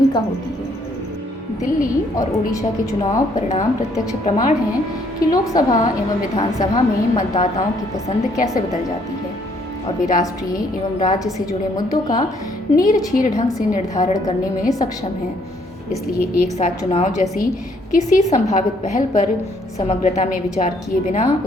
होती है। दिल्ली और ओडिशा के चुनाव परिणाम प्रत्यक्ष प्रमाण हैं कि लोकसभा एवं विधानसभा में मतदाताओं की पसंद कैसे बदल जाती है और वे राष्ट्रीय एवं राज्य से जुड़े मुद्दों का नीरछीर ढंग से निर्धारण करने में सक्षम हैं। इसलिए एक साथ चुनाव जैसी किसी संभावित पहल पर समग्रता में विचार किए बिना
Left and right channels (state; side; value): normal; both; correlation 0.67